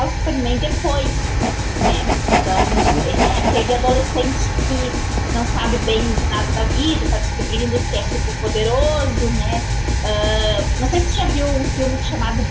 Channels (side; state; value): both; identical; correlation 1.00